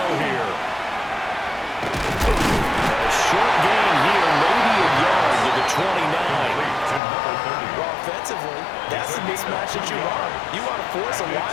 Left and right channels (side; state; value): right; drops out; at 7.0 s